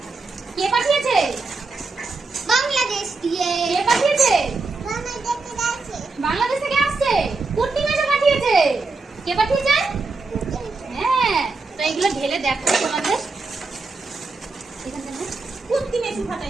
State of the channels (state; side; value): quieter; left; 3.8 dB